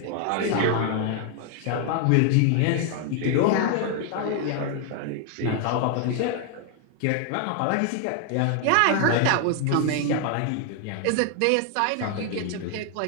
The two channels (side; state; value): both; different; correlation 0.00